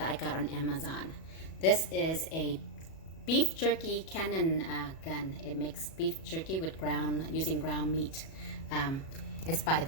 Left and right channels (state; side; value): late; right; 37 ms